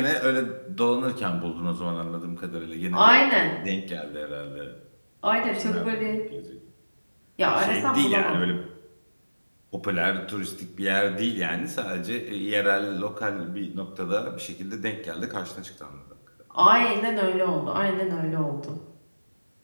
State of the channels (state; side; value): inverted; both; correlation -1.00